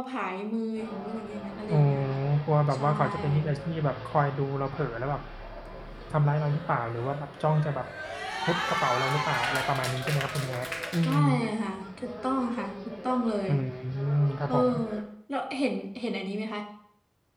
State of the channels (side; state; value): both; identical; correlation 1.00